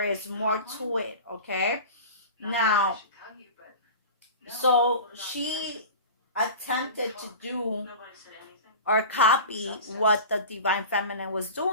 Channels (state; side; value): inverted; both; correlation -0.34